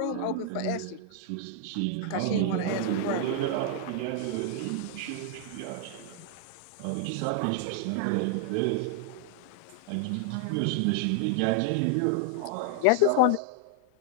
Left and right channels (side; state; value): both; different; correlation -0.01